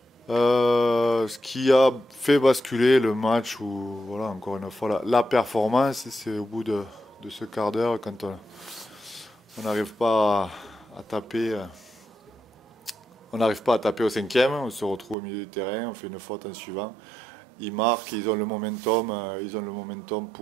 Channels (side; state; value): left; drops out; at 15.2 s